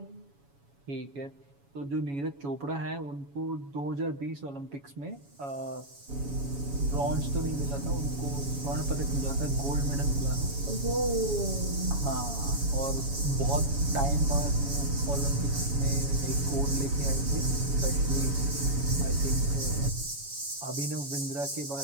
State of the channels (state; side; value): late; left; 7.1 ms